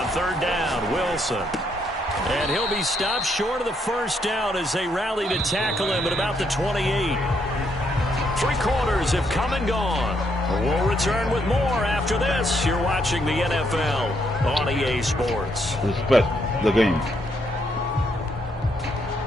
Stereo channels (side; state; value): both; normal; correlation 0.75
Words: third down, Wilson. And he'll be stopped short of the first down as they rally to tackle him at about the 28. 3 quarters have come and gone. We'll return with more after this. You're watching the NFL on EA Sports. Respect the game.